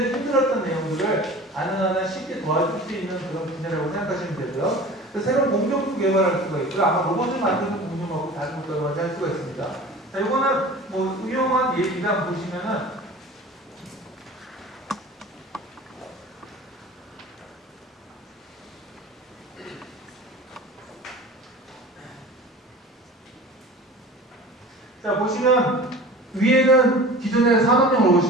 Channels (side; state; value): both; normal; correlation 0.40